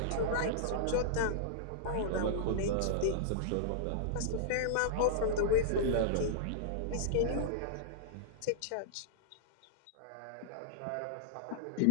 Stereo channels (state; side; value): different; both; correlation -0.02